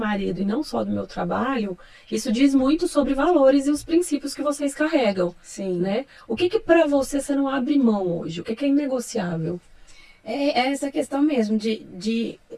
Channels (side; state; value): both; identical; correlation 1.00